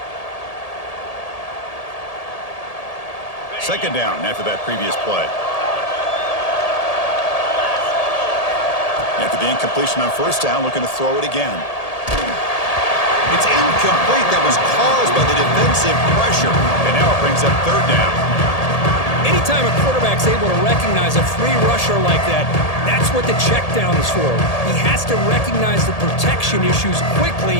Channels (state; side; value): late; right; 1.8 ms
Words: Second down after that previous play. After the incompletion on 1st down, looking to throw it again. It's incomplete. That was caused by the defensive pressure. And now it brings up 3rd down. Anytime a quarterback's able to recognize a free rusher like that, that's what the check down is for. He has to recognize the protection issues quickly